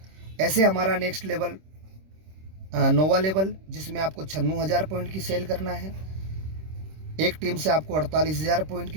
ऐसे हमारा नेक्स्ट लेवल नोवा लेवल, जिसमें आपको 96,000 पॉइंट की सेल करना है। एक टीम से आपको 48,000 पॉइंट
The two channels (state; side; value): late; left; 26 ms